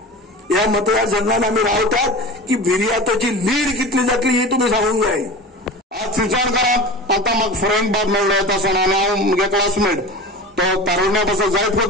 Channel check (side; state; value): both; normal; correlation 0.33